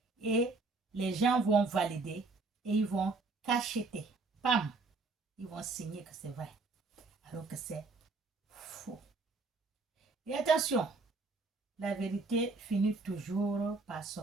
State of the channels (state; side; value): quieter; left; 3.8 dB